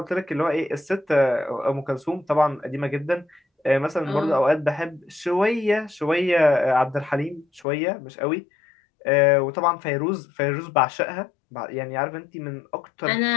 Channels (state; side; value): drops out; right; at 7.7 s